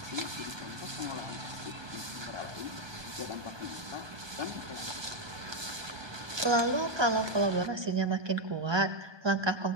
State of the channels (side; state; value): left; late; 1.2 ms